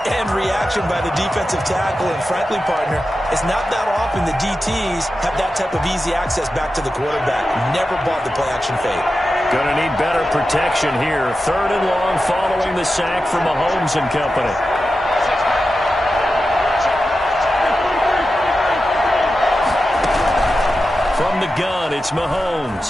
and reaction by the defensive tackle. And frankly, partner, it's not that often the DTs have that type of easy access back to the quarterback. Never bought the play-action fake. Going to need better protection here. 3rd and long following the sack from Mahomes and company. From the gun, it's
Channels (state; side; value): normal; both; correlation 0.91